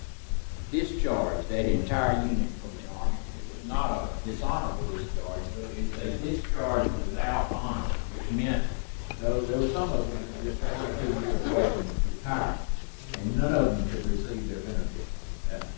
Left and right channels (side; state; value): right; silent; digital silence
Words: discharged that entire unit from the Army. It was not a dishonorable discharge, but it's a discharge without honor, which meant, though there were some of them that just 1 or 2 years away from retirement, and none of them could receive their benefits after